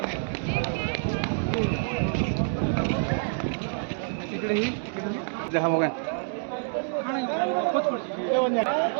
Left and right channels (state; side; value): silent; left; digital silence